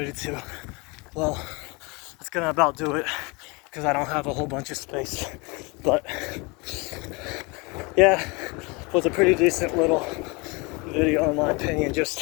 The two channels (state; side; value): quieter; right; 27.8 dB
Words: Well, that's gonna about do it because I don't have a whole bunch of space. But yeah, it was a pretty decent little video in my opinion.